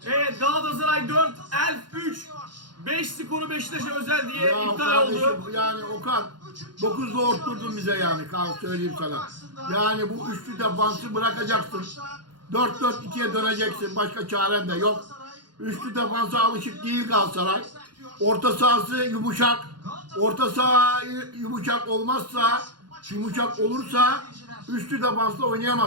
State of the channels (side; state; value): left; late; 0.71 ms